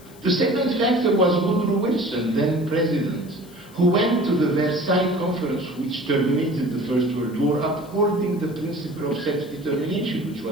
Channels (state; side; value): noise; left; hiss, 24 dB below the sound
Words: The second factor was Woodrow Wilson, then president, who went to the Versailles Conference, which terminated the First World War, upholding the principle of self-determination, which